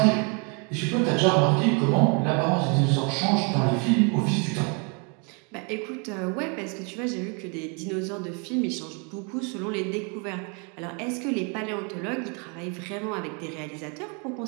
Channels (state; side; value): quieter; left; 35.0 dB